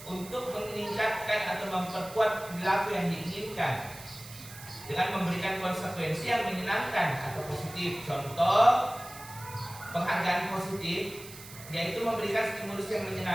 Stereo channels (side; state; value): right; noise; hiss, 16 dB below the sound